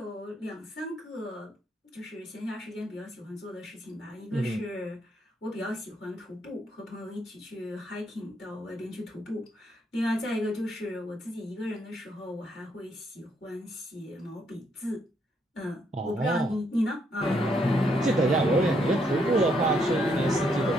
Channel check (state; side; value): normal; both; correlation 0.74